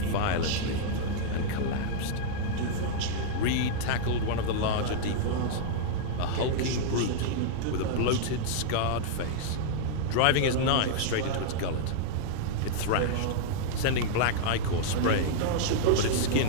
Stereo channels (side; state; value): both; different; correlation -0.02